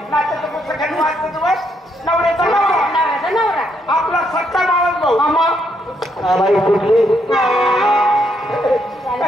नाचाचं पुस्तक वाचतं तुम्हाला नवऱ्याचा नवरा आपला सत्ता मावस भाऊ कुठली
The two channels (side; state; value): both; normal; correlation 0.75